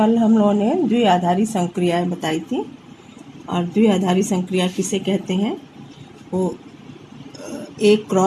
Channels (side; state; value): both; identical; correlation 1.00